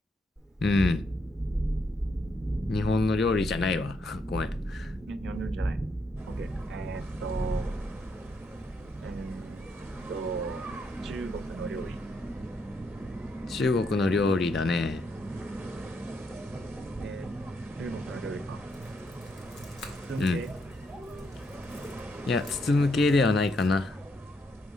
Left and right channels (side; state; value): both; normal; correlation 0.77